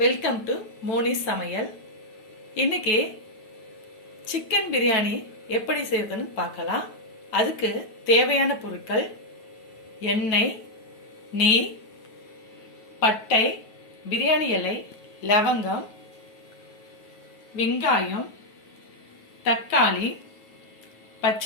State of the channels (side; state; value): right; late; 9.3 ms